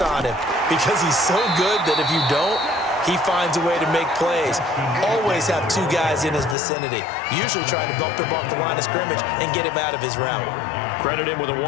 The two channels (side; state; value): right; drops out; at 6.6 s